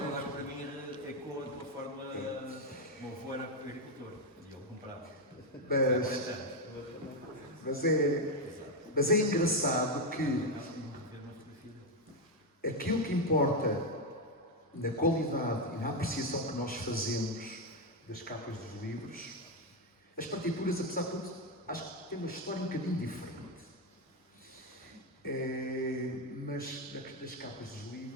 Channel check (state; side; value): normal; both; correlation 0.06